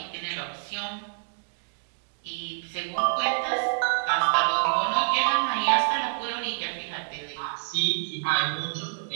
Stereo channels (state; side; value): silent; left; digital silence